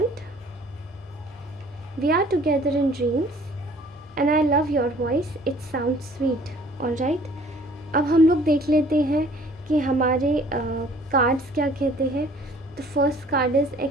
We are together in dreams. And I love your voice. It sounds sweet. Alright. अब हम लोग देख लेते हैं कि हमारे कार्ड्स क्या कहते हैं। The first card is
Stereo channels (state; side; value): normal; both; correlation 0.54